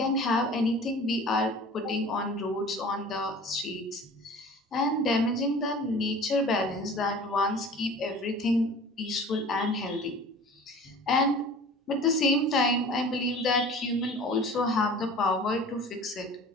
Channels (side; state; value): both; normal; correlation 0.43